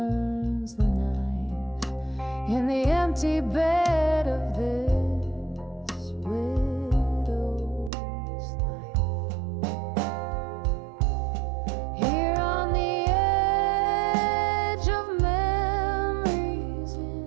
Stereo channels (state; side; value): drops out; left; at 7.9 s